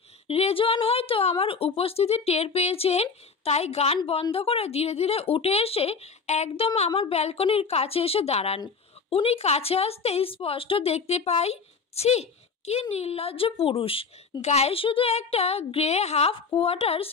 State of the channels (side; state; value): right; quieter; 5.1 dB